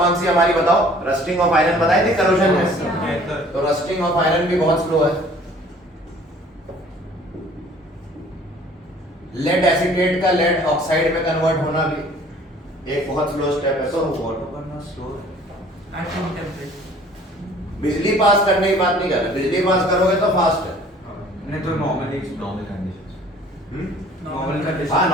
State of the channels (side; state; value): both; normal; correlation 0.53